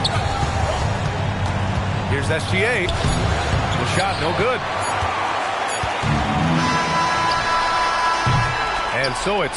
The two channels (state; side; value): identical; both; correlation 1.00